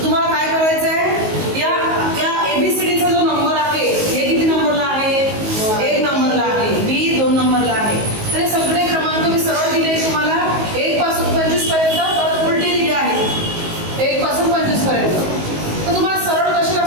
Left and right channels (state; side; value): late; left; 19 ms